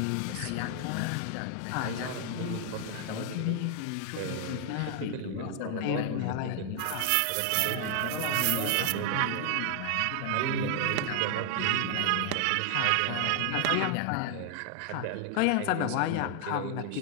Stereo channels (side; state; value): both; different; correlation 0.00